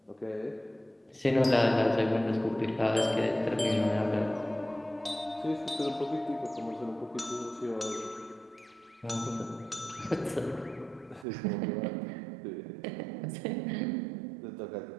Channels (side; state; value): left; drops out; at 11.2 s